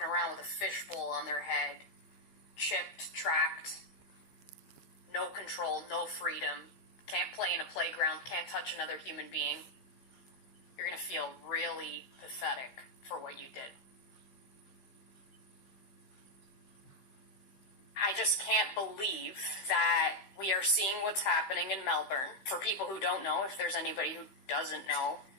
around with a fishbowl on their head, chipped, tracked, no control, no freedom, can't play in a playground, can't touch another human being, you're going to feel really pathetic for what you did. I just can't believe that we are seeing what's happening in Melbourne. For people who don't know, if there's anybody who doesn't know,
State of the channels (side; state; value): right; late; 15 ms